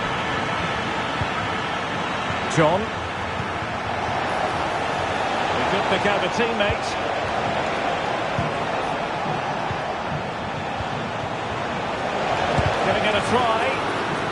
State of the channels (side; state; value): both; identical; correlation 1.00